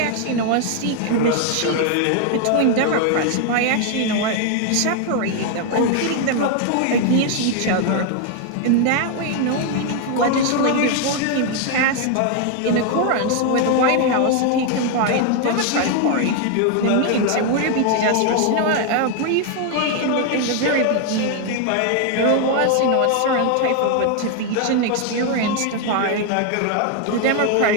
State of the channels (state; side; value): different; both; correlation 0.01